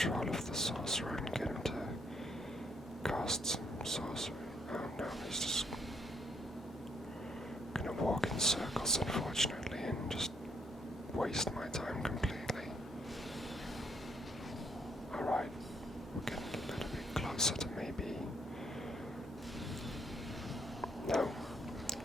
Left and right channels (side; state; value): both; normal; correlation 0.72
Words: of the sorcerer and get him to cast some sorcery. Oh no, he's just gonna walk in circles, unfortunately, and just waste my time completely. Alright, we're getting a little bit closer to maybe... No.